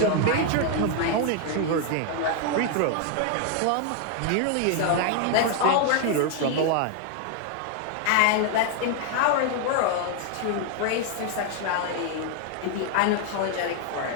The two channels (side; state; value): both; different; correlation 0.00